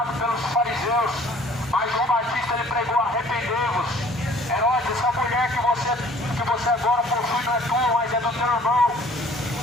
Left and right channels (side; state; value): both; normal; correlation 0.54